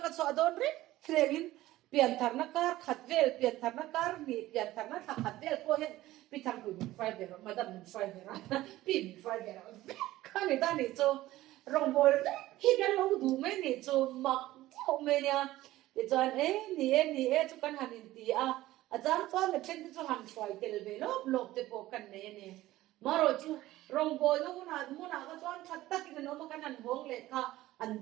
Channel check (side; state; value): left; quieter; 16.2 dB